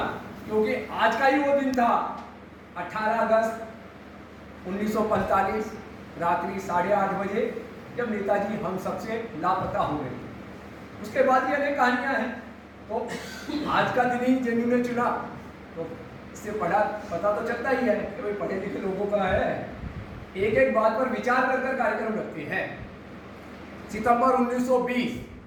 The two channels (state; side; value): identical; both; correlation 1.00